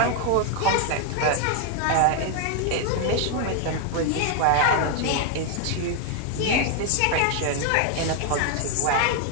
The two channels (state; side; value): different; both; correlation 0.01